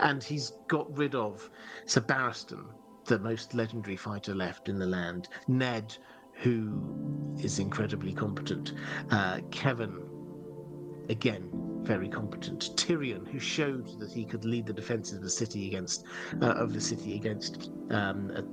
he's got rid of Sir Barristan, the most legendary fighter left in the land, Ned, who is incredibly competent, Kevin, again, very competent, Tyrion, who showed that he could lead the defenses of the city against a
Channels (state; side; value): identical; both; correlation 1.00